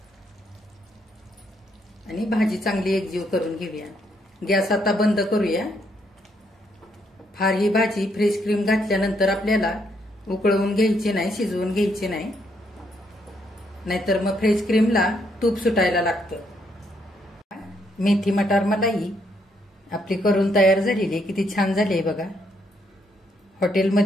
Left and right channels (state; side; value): normal; both; correlation 0.74